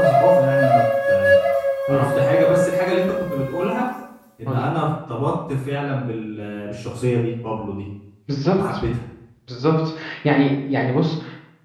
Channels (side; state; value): both; identical; correlation 1.00